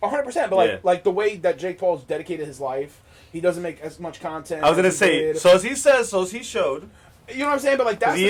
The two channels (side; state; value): both; identical; correlation 1.00